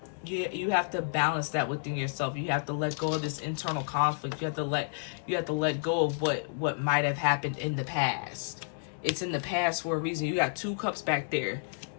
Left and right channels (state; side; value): silent; right; digital silence